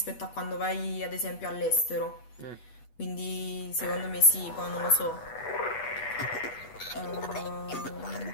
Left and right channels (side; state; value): right; late; 8.2 ms